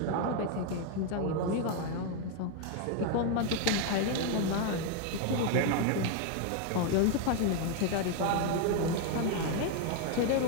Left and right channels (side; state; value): both; different; correlation 0.01